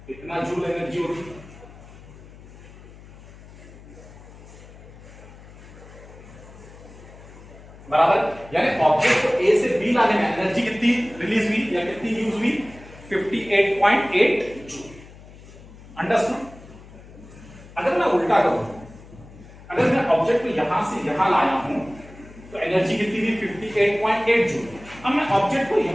कितना जूल एनर्जी होगी, बराबर। यानी ऑब्जेक्ट को ए से बी लाने में एनर्जी कितनी रिलीज हुई या कितनी यूज हुई, 58.8 जूल। अंडरस्टूड। अगर मैं उल्टा करूं, अगर मैं ऑब्जेक्ट को यहां से यहां लाया हूं तो एनर्जी कितनी थी, 58.8 जूल। अब मैं ऑब्जेक्ट को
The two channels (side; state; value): left; noise; hum, 19 dB below the sound